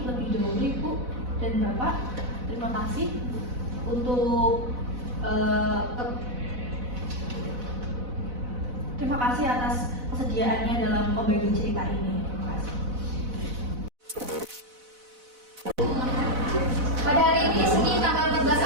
lebih dahulu Ibu dan Bapak. Terima kasih untuk terima kasih atas kesediaannya dalam membagi cerita ini. Terima kasih. Pada hari ini, Senin tanggal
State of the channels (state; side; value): late; left; 4.0 ms